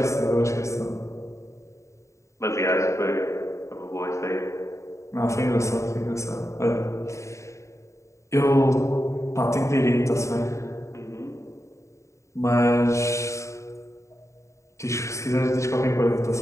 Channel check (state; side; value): late; right; 0.14 ms